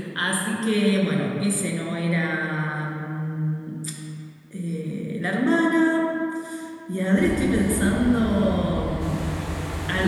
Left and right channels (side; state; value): both; identical; correlation 1.00